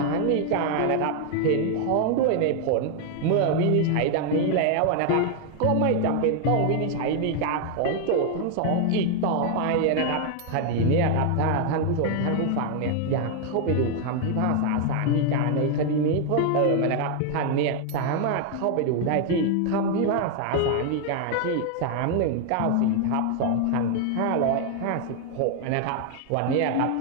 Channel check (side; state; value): both; different; correlation 0.00